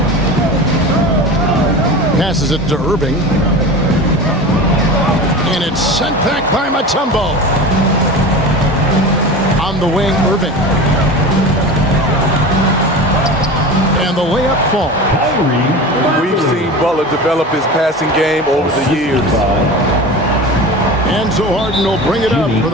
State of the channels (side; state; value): both; normal; correlation 0.31